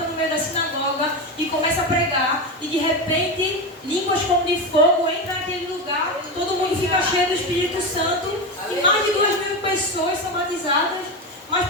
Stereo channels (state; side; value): normal; both; correlation 0.17